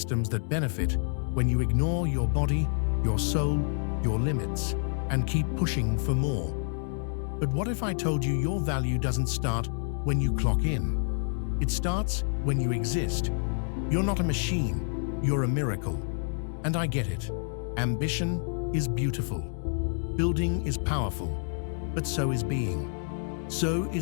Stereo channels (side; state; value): right; silent; digital silence